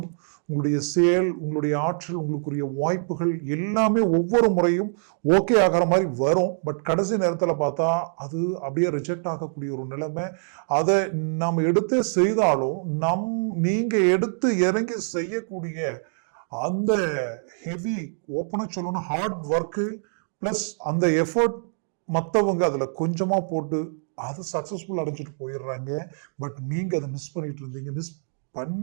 உங்களுடைய செயல், உங்களுடைய ஆற்றல், உங்களுக்குரிய வாய்ப்புகள் எல்லாமே ஒவ்வொரு முறையும் ஓகே ஆகிற மாதிரி வரும். பட் கடைசி நேரத்தில் பார்த்தா அது அப்படியே ரிஜெக்ட் ஆகக்கூடிய ஒரு நிலைமை. அதை நாம் எடுத்து செய்தாலும் நீங்க எடுத்து இறங்கி செய்யக்கூடிய அந்த ஹெவி ஓப்பனா சொல்லணும் ஹார்ட் ஒர்க்கு பிளஸ் அந்த எஃபர்ட் மற்றவங்க அதுல கொஞ்சமா போட்டு அது சக்சஸ்ஃபுல் அடைஞ்சிட்டு போயிடுறாங்க. பட் நீங்க அதை மிஸ் பண்ணிட்டு இருந்தீங்க.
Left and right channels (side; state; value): left; silent; digital silence